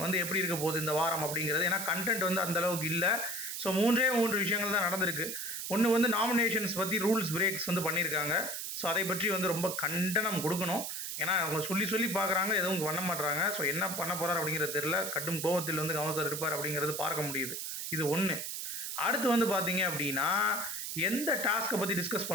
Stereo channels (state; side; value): noise; right; hiss, 5 dB below the sound